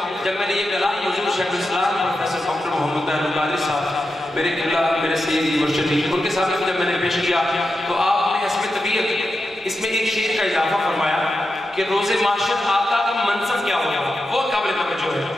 جب میں نے یہ کلام حضور شیخ الاسلام پروفیسر ڈاکٹر محمد طاہر القادری صاحب میرے قبلہ میرے سیدی مرشدی ان کے سامنے جب میں نے پیش کیا تو آپ نے حسب طبیعت اس میں ایک شعر کا اضافہ فرمایا کہ روز معاشر آقا کا منصب کیا ہوگا، وہ قابل توجہ ہے.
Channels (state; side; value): normal; both; correlation 0.89